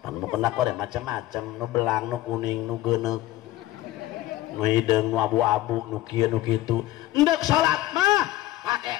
kena kore macam-macam, nu belang, nu kuning, nu geuneuk, nu hideung, nu abu-abu, nu kieu nu kitu. Endek salat mah pake.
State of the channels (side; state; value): right; quieter; 15.7 dB